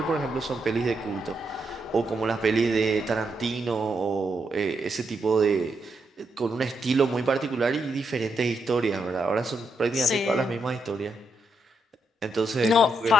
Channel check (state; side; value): normal; both; correlation 0.80